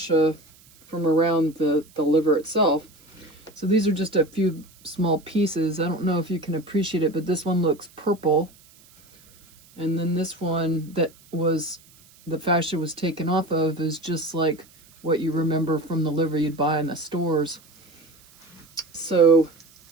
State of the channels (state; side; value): noise; right; hiss, 27 dB below the sound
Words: from around the liver itself. So these are just a few small pieces. I don't know if you can appreciate it, but this one looks purple. And then this one that was, the fascia was taken off of, is just like what you remember from the liver you'd buy in the stores. So